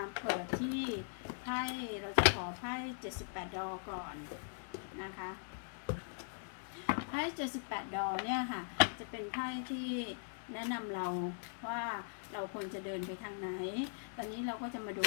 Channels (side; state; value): right; silent; digital silence